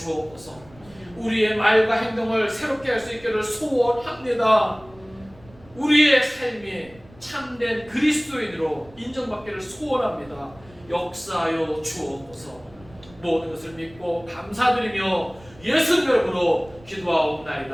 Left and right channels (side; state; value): right; noise; rumble, 24 dB below the sound